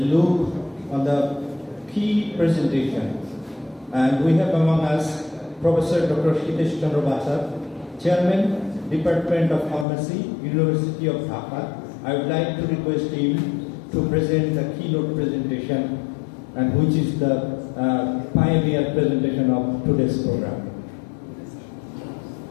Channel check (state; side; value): drops out; right; at 9.9 s